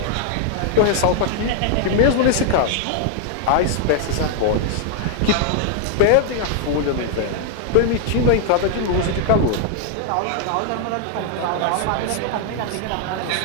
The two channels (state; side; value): different; both; correlation 0.00